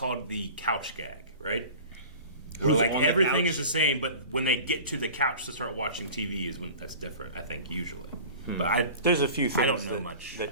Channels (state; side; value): inverted; both; correlation -0.39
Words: the couch gag, right? Where Who's like on the everything couch? is the same, but when they get to the couch to start watching TV is when that's different. I think usually, but There's a few things I don't know that, much. that